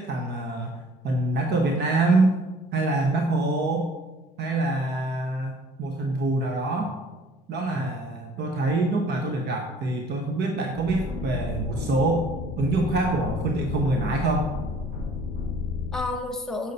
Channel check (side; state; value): both; normal; correlation 0.54